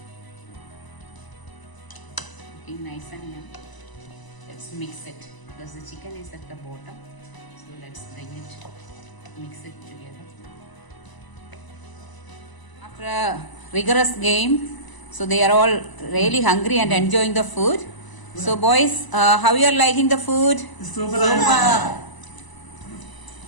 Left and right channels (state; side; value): late; right; 1.0 ms